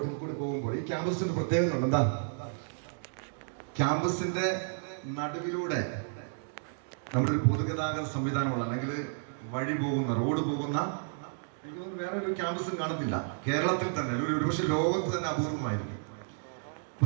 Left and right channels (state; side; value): silent; left; digital silence